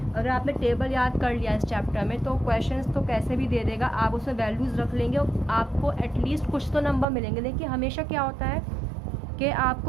अगर आपने टेबल याद कर लिया इस चैप्टर में तो क्वेश्चंस तो कैसे भी दे देगा, आप उसमें वैल्यूज़ रख लेंगे और आपको एटलीस्ट कुछ तो नंबर मिलेंगे। देखिए हमेशा क्या होता है कि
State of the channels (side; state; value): left; drops out; at 7.1 s